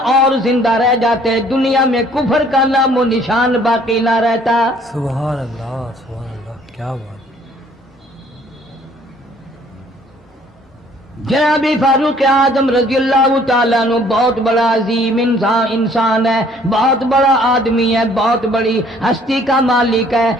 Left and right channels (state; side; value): normal; both; correlation 0.59